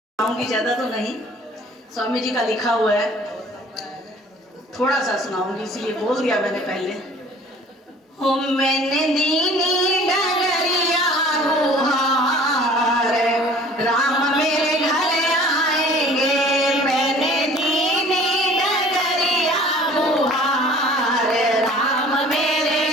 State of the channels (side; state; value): both; normal; correlation 0.49